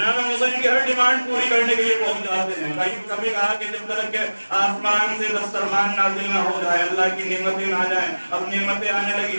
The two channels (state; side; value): inverted; both; correlation -1.00